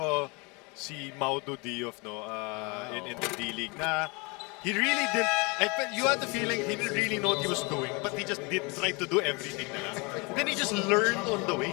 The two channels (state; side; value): quieter; right; 27.8 dB